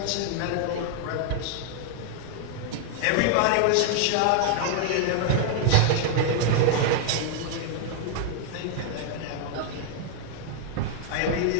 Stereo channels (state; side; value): different; both; correlation 0.00